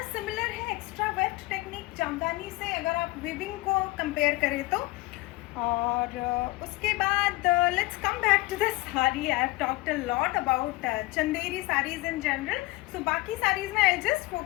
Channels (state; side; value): quieter; right; 20.4 dB